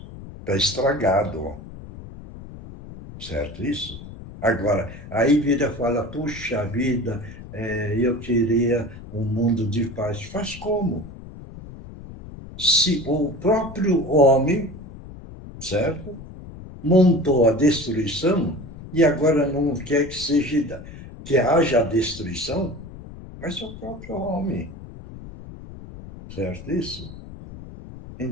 Está estragado, certo isso? Agora, aí vira e fala, puxa vida, eu queria um mundo de paz. Faz como? Se o próprio homem, certo, montou a destruição e agora não quer que haja destruição, mas é o próprio homem, certo isso?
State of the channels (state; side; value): noise; left; rumble, 15 dB below the sound